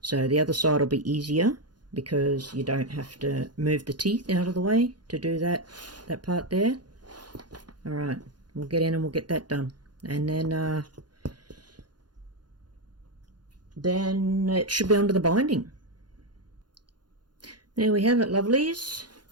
so the other side will be easier because you don't have to move the teeth out of the way to do that part there. Alright, we'll get in and we'll get that done, and then it should be onto the binding. There we have it, lovelies,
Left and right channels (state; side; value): late; left; 0.70 ms